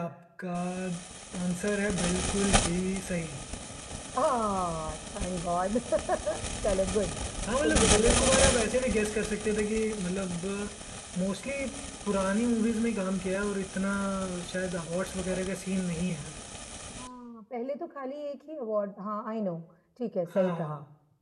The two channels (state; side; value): identical; both; correlation 1.00